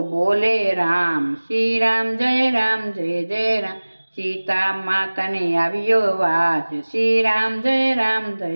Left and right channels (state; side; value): inverted; both; correlation -1.00